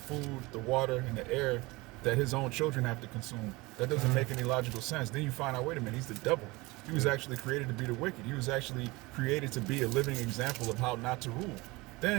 the water, and the air that his own children have to consume. That doesn't make any logical sense. Then you find out, wait a minute, he's the devil. He was actually created to be the wicked. He was actually created to be a living example of how not to rule.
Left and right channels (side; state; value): left; quieter; 22.9 dB